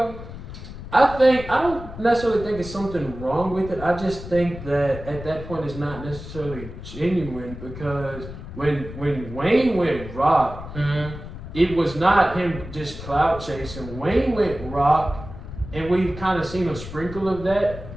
I don't necessarily think it's something wrong with it. I just think that at that point it's not necessarily genuine because when Wayne went rock, it was not him just clout chasing. Wayne went rock, and we've kind of seen a sprinkle of that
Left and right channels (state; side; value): noise; left; rumble, 12 dB below the sound